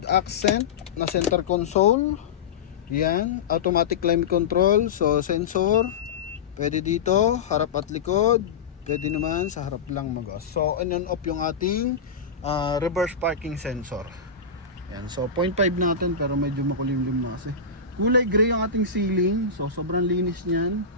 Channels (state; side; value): quieter; right; 5.5 dB